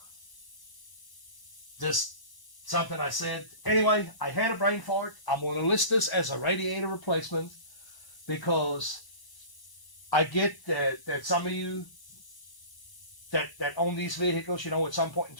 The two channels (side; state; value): right; late; 1.0 ms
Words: just something I said. Anyway, I had a brain fart. I'm going to list this as a radiator replacement because I get that some of you that own these vehicles, you know, at some point in